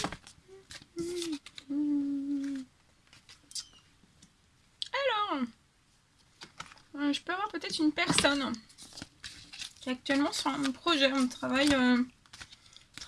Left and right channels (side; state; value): both; identical; correlation 1.00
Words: Alors, je peux avoir peut-être une personne qui est actuellement sur un projet. On travaille